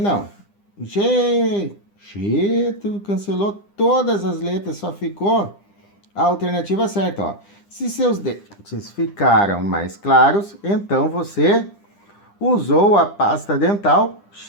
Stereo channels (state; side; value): late; right; 9.9 ms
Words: G, tu cancelou todas as letras, só ficou a alternativa certa, ó. Se seus dentes ficaram mais claros, então você usou a pasta dental